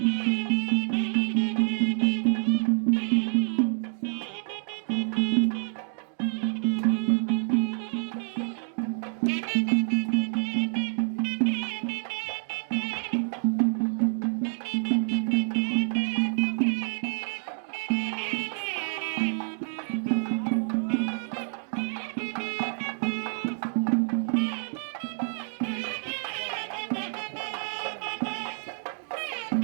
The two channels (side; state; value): left; silent; digital silence